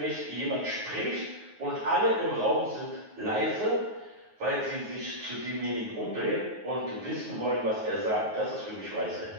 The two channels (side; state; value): left; late; 9.4 ms